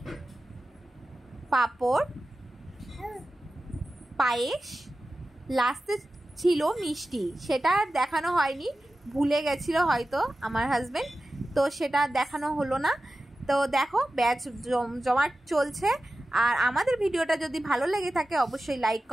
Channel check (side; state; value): both; normal; correlation 0.94